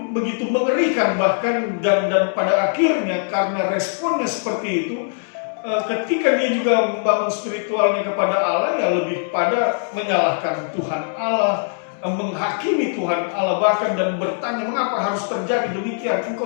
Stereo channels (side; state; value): right; silent; digital silence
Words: begitu mengerikan bahkan, dan pada akhirnya karena responnya seperti itu, ketika dia juga membangun spiritualnya kepada Allah, ya lebih pada menyalahkan Tuhan Allah, menghakimi Tuhan Allah bahkan, dan bertanya, mengapa harus terjadi demikian?